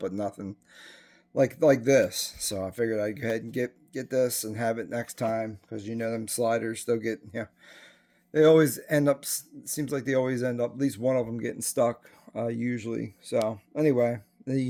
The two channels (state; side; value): identical; both; correlation 1.00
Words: nothing like this. So I figured I'd go ahead and get this and have it next time, because them sliders, they'll get they always end up, seems like they always end up, at least one of them getting stuck usually. So anyway,